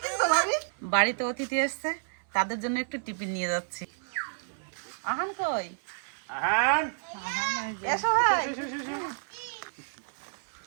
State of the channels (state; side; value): silent; left; 58 dB below the other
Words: কিছু তো ভাবি। বাড়িতে অতিথি এসছে, তাদের জন্য একটু টিফিন নিয়ে যাচ্ছি। আহান কই? আহান এসো ভাই।